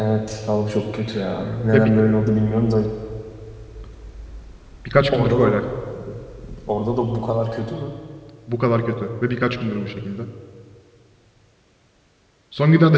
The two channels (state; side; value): identical; both; correlation 1.00